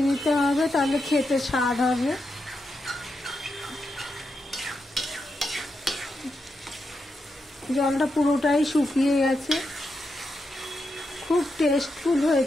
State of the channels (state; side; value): normal; both; correlation 0.85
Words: নিতে হবে, তাহলে খেতে স্বাদ হবে। জলটা পুরোটাই শুকিয়ে গেছে, খুব টেস্টফুল